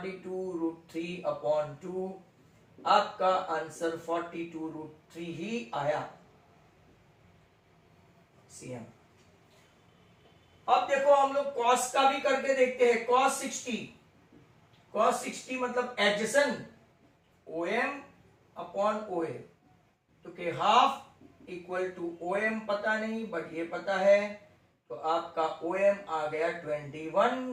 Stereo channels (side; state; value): both; identical; correlation 1.00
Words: √3 upon 2, आपका आंसर 42 √3 ही आया CM। अब देखो हम लोग cos का भी करके देखते हैं। cos cos 60 मतलब एडजेसेंट OM अपॉन OA, तो के हाफ इक्वल टू OM पता नहीं बट ये पता है, तो आपका OM आ गया